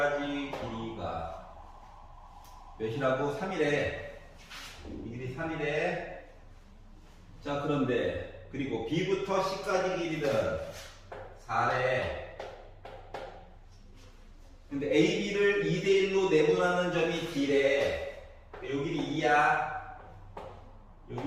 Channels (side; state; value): both; identical; correlation 1.00